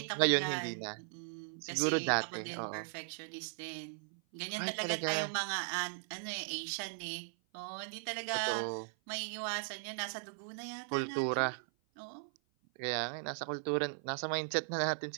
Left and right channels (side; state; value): left; silent; 53 dB below the other